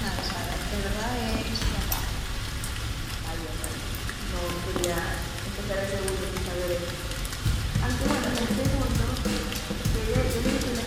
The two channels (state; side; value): identical; both; correlation 1.00